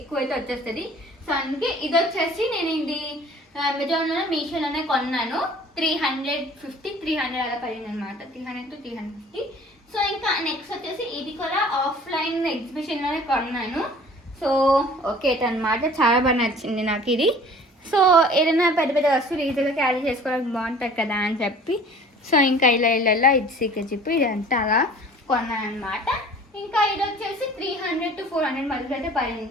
అయితే వచ్చేస్తుంది. సో అందుకే ఇది వచ్చేసి నేను ఇది అమెజాన్లో మీషోలోనే కొన్నాను. 350-300 అలా పడింది అనమాట. 300-350. సో ఇంకా నెక్స్ట్ వచ్చేసి ఇది కూడా ఆఫ్లైన్ ఎగ్జిబిషన్లోనే కొన్నాను. సో ఓకే అనమాట, చాలా బాగా నచ్చింది నాకు ఇది. సో ఏదైనా పెద్ద పెద్ద వస్తువులు ఈజీగా క్యారీ చేసుకోవడానికి బాగుంటుంది కదా అని చెప్పి సో ఇంకా ఇలా ఇది సీక్రెట్ జిప్ ఇదంతా అలా కొన్నాను అనమాట. ఇంకా ఇది వచ్చేసి 300-400 మధ్యలో అయితే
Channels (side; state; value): both; normal; correlation 0.48